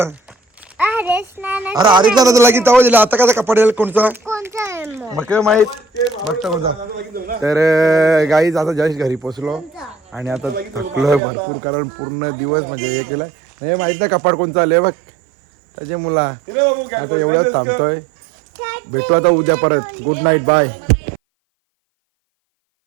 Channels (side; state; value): left; drops out; at 11.2 s